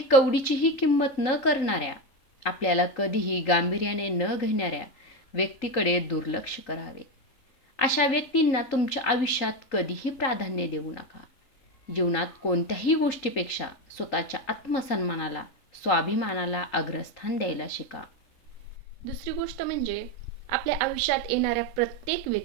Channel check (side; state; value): right; late; 3.8 ms